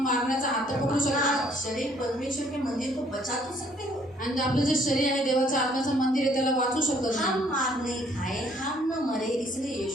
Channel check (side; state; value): both; normal; correlation 0.63